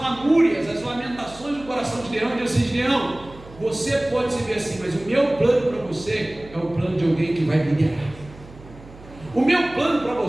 as lamentações do coração de Gideão. E diz assim: Gideão, você pode se ver assim, mas o meu plano para você é o plano de alguém que vai liderar. O meu plano para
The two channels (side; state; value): right; noise; hum, 20 dB below the sound